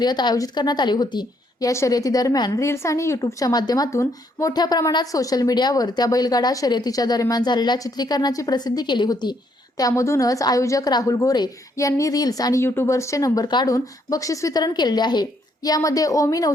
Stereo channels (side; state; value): both; normal; correlation 0.72